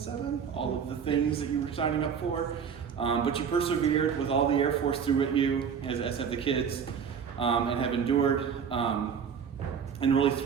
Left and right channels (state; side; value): quieter; left; 7.0 dB